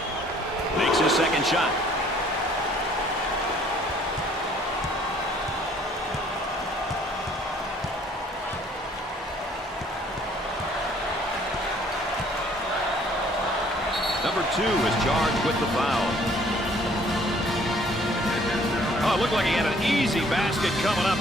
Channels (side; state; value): both; normal; correlation 0.59